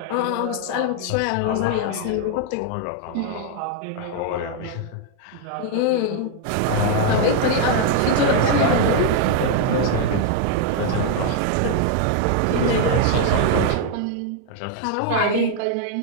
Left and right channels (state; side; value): different; both; correlation 0.00